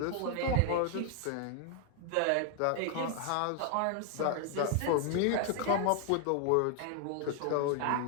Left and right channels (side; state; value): both; different; correlation 0.00